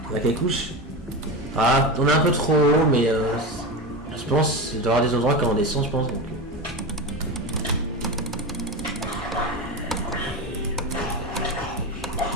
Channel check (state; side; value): normal; both; correlation 0.22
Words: On a quelques couches. Ah on est un peu trop haut mais je pense qu'il doit y avoir des endroits quand on descend je pense donc.